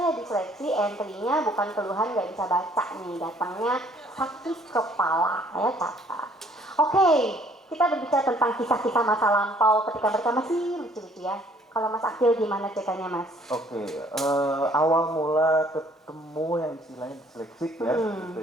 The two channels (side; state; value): both; normal; correlation 0.61